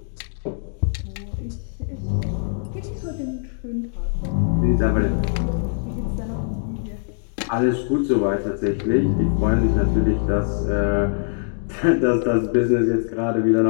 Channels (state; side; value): silent; right; digital silence